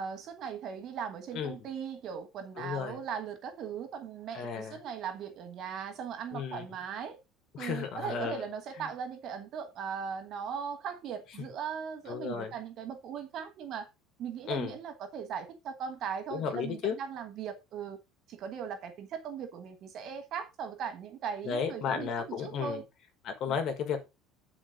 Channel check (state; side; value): normal; both; correlation 0.47